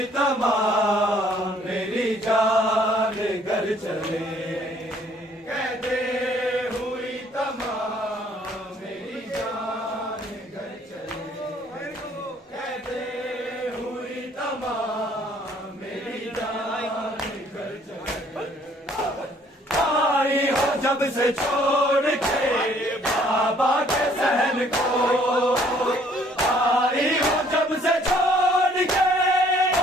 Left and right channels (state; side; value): normal; both; correlation 0.61